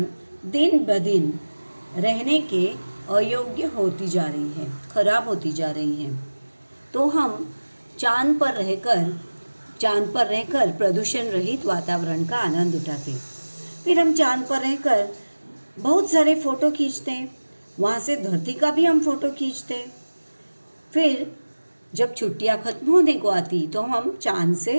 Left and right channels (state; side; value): inverted; both; correlation -1.00